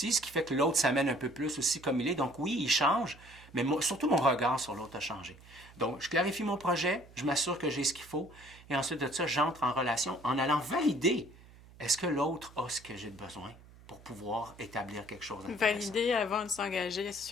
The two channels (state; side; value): noise; right; hum, 22 dB below the sound